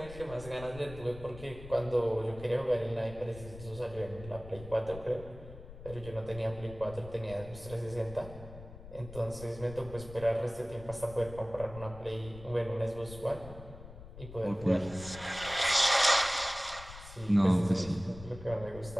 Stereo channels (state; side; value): noise; left; rumble, 15 dB below the sound